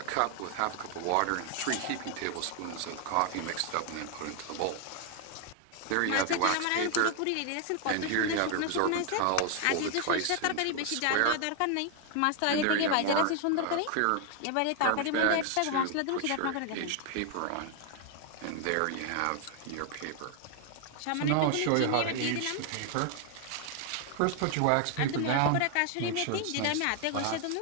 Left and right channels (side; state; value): both; different; correlation 0.00